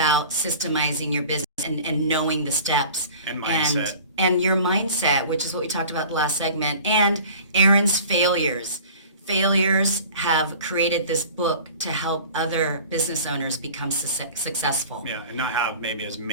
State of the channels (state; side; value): inverted; both; correlation -0.43